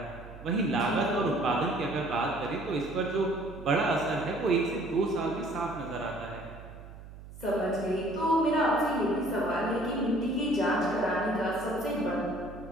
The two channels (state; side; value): noise; right; hum, 16 dB below the sound